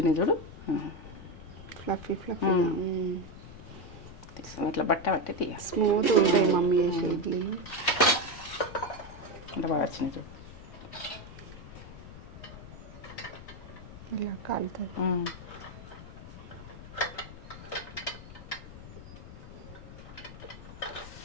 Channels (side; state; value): left; noise; rumble, 14 dB below the sound